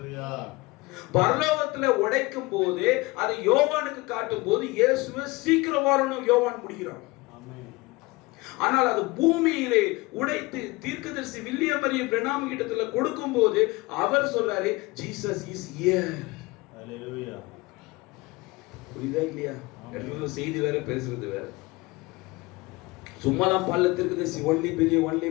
பரலோகத்துல உடைக்கும் போது அதை யோவானுக்கு காட்டும் போது இயேசுவே சீக்கிரம் வரணும் யோவான் முடிக்கிறான். ஆனால் அது பூமியிலே உடைத்து தீர்க்கதரிசி வில்லியம் மரியம் பிரணாம் கிட்டத்துல கொடுக்கும் போது அவர் சொல்றாரு, ஜீசஸ் இஸ் ஹியர். ஹalleluya. புரியுதா இல்லையா? செய்தி வேற, பேசுறது வேற. சும்மாதான் பல்ல தீர்க்கதரிசி only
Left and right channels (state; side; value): quieter; right; 22.9 dB